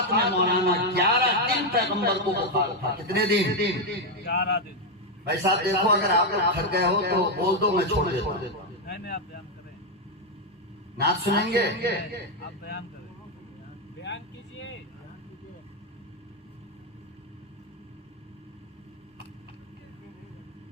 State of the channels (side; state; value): both; normal; correlation 0.04